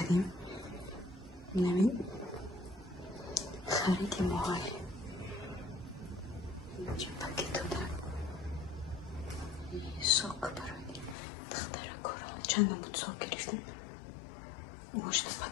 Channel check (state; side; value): drops out; right; at 11.2 s